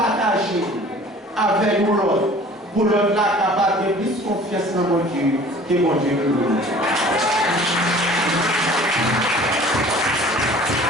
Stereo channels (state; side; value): normal; both; correlation 0.48